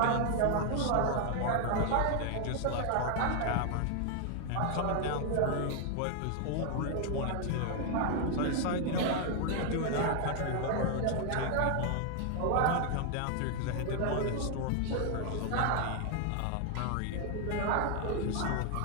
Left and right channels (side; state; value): both; different; correlation 0.00